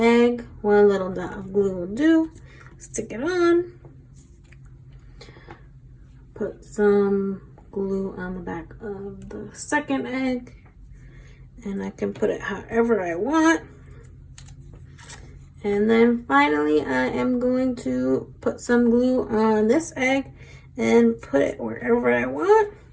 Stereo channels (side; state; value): both; identical; correlation 1.00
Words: One little dot of glue will do. Stick it on. Put some glue on the back of the second egg. And I can put it however I want. And then finally, I am going to put some glue on this egg and put it wherever I want.